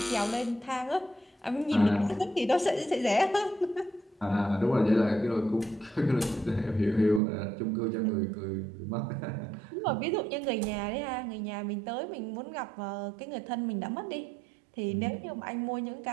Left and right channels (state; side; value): drops out; left; at 7.2 s